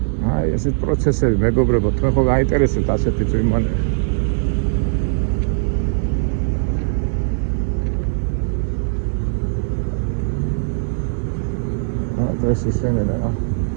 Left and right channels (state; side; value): silent; left; 66 dB below the other